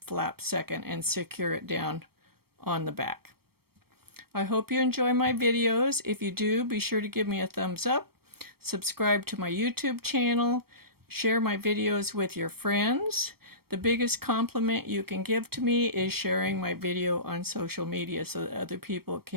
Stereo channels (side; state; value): left; late; 0.95 ms